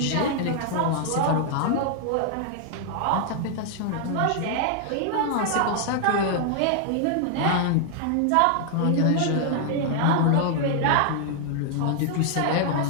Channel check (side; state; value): both; different; correlation 0.00